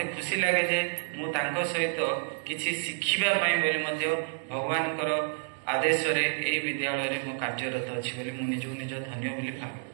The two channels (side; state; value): left; silent; digital silence